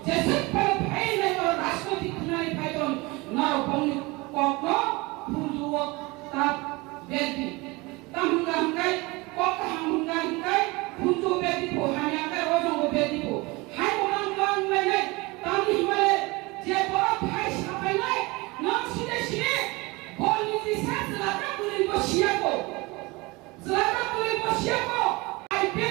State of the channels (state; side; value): quieter; left; 24.1 dB